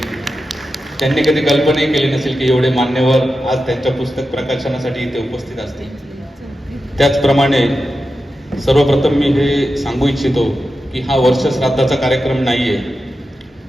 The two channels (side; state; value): both; normal; correlation 0.91